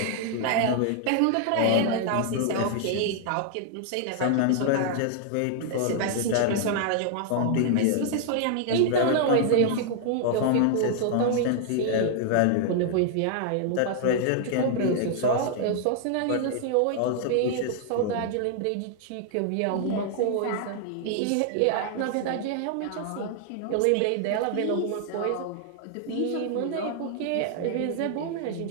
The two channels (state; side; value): different; both; correlation 0.00